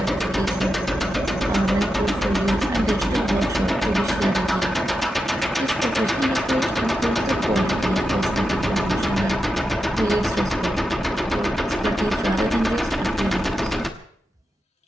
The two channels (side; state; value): both; normal; correlation 0.89